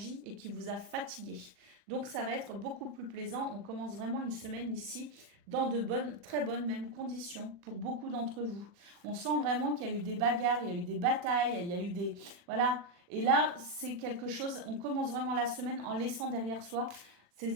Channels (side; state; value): left; late; 40 ms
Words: et qui vous a fatigué. Donc ça va être beaucoup plus plaisant. On commence vraiment une semaine ici dans de bonnes, très bonnes même conditions pour beaucoup d'entre vous. On sent vraiment qu'il y a eu des bagarres, il y a eu des batailles, il y a eu des... Voilà. Et là, c'est quelque chose, on commence vraiment la semaine en laissant derrière soi